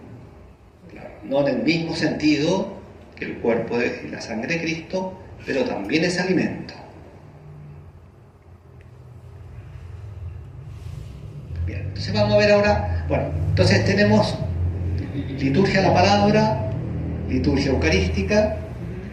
No en el mismo sentido que el cuerpo y la sangre de Cristo, pero también es alimento. Bien, entonces vamos a ver ahora, bueno, entonces tenemos liturgia de la palabra, liturgia eucarística,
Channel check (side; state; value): both; identical; correlation 1.00